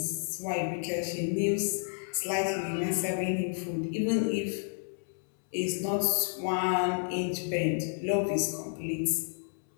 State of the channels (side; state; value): right; silent; 57 dB below the other